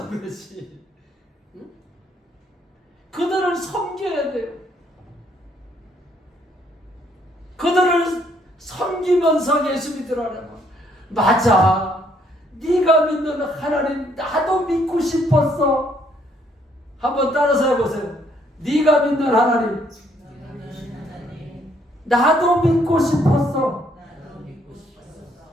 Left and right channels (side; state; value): both; normal; correlation 0.68